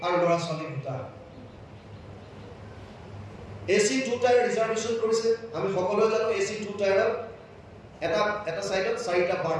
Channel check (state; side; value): identical; both; correlation 1.00